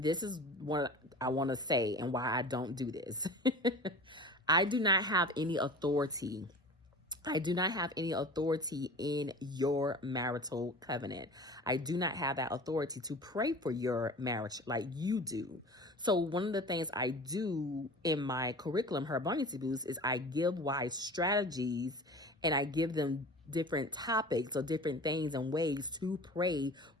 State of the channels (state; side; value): normal; both; correlation 0.38